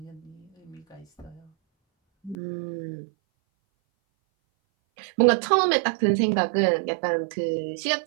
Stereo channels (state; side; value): drops out; left; at 2.4 s